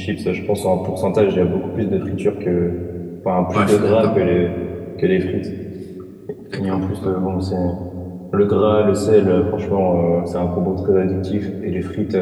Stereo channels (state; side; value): identical; both; correlation 1.00